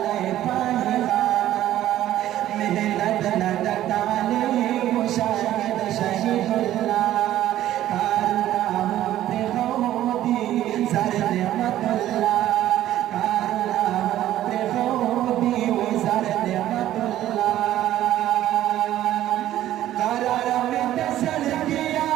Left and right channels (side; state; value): left; quieter; 13.2 dB